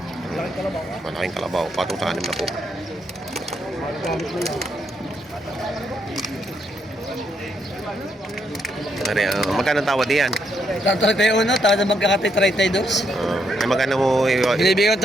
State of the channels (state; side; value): normal; both; correlation 0.76